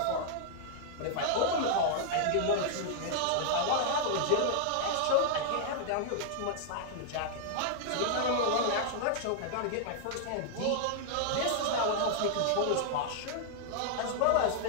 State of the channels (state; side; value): different; both; correlation -0.01